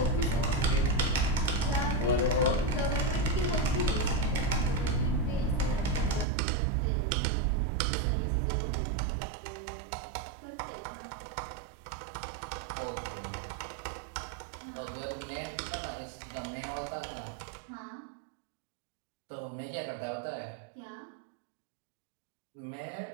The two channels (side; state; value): left; drops out; at 6.2 s